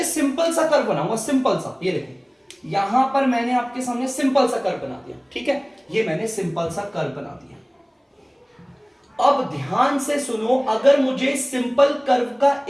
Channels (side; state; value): both; identical; correlation 1.00